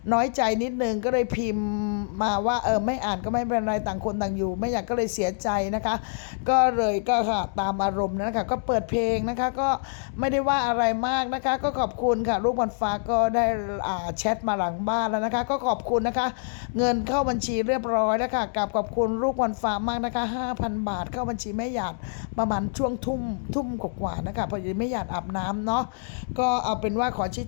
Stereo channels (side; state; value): right; silent; digital silence